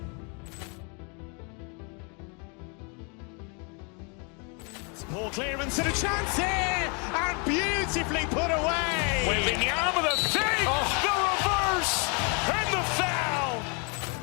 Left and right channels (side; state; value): right; quieter; 35.3 dB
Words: Ball clearance and a chance here, and beautifully put away. Wembanyama the save, the reverse, and the foul.